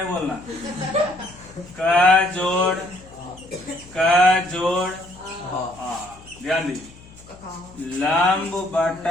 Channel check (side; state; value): left; noise; hum, 22 dB below the sound